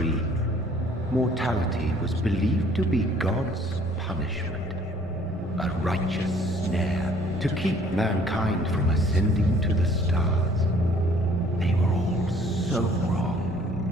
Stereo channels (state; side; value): normal; both; correlation 0.58